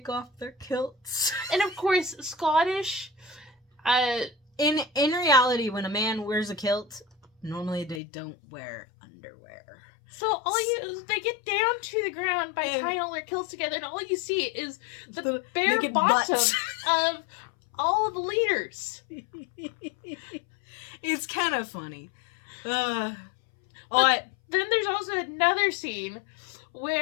off their kilts. And, of course, Scottish, In reality, when a man wears a kilt, normally they don't wear underwear. So they get down to the ground by tying all their kilts together, and all you see is the bare bottom of all the leaders. It's kind of funny. Then there's also another scene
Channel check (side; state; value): right; drops out; at 8.0 s